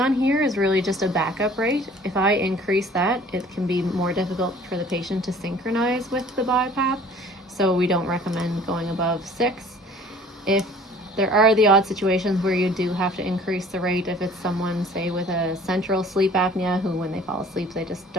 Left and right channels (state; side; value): normal; both; correlation 0.50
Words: here is really just a backup rate. If I increase that, it can be more difficult for the patient to synchronize with the BiPAP, so we don't recommend going above 6. If there are the odd situations where you do have to increase the rate, if it's someone, say, with a central sleep apnea who, when they fall asleep, they just